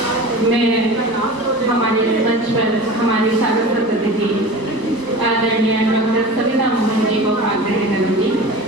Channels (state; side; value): late; left; 1.0 ms